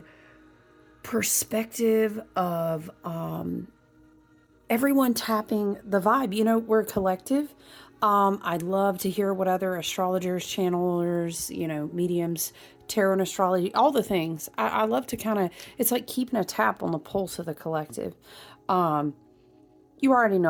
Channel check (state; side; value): identical; both; correlation 1.00